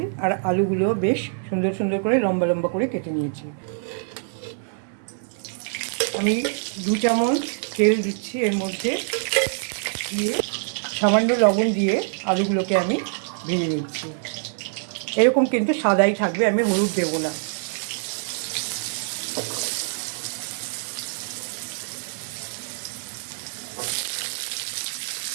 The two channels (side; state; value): left; silent; digital silence